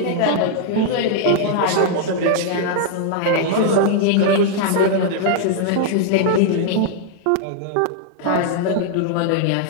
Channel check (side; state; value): both; different; correlation -0.01